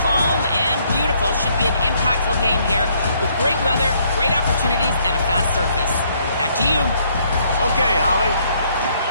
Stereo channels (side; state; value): both; inverted; correlation -0.68